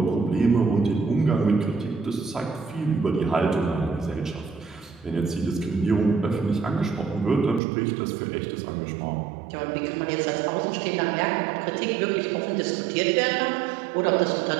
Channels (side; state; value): left; drops out; at 7.6 s